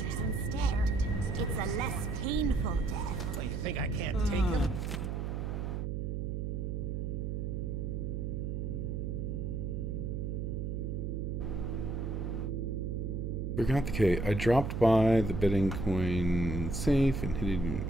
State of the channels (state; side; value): noise; right; hum, 2 dB below the sound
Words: instead. It's a less painful death. Oh, you think I can't take him? Forgot the K. I dropped by the betting coin safe and hid